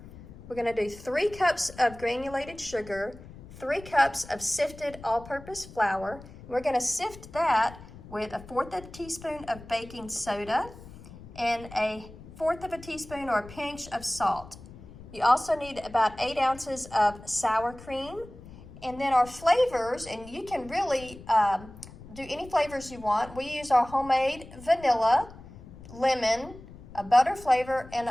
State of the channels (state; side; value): noise; left; rumble, 17 dB below the sound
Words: We're going to do 3 cups of granulated sugar, 3 cups of sifted all-purpose flour. We're going to sift that with 1/4 teaspoon of baking soda and 1/4 teaspoon or a pinch of salt. You also need about 8 ounces of sour cream. And then our flavors, and you can really do any flavors you want. We use our homemade vanilla, lemon, a butter flavor, and